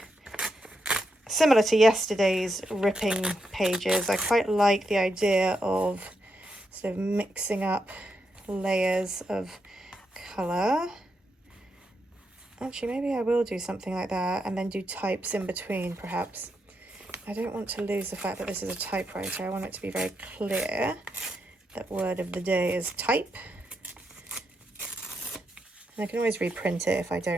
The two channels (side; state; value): both; normal; correlation 0.83